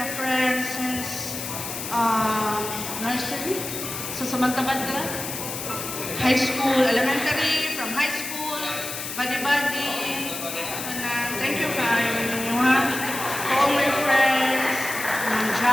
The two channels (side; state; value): left; noise; hiss, 6 dB below the sound